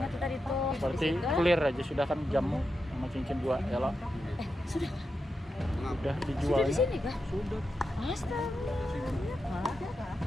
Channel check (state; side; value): normal; both; correlation 0.88